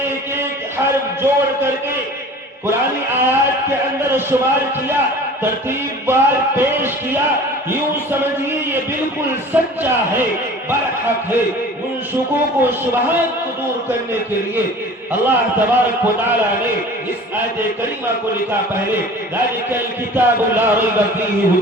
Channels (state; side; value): normal; both; correlation 0.42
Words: ایک حرف جوڑ کر کے قرآنی آیات کے اندر شمار کیا، ترتیب بار پیش کیا، یوں سمجھیے یہ بالکل سچا ہے، برحق ہے۔ ان شکوک و شبہات کو دور کرنے کے لیے اللہ تبارک و تعالی نے اس آیت کریمہ کو لکھا پہلے ذالک الکتاب لا ریب فیہ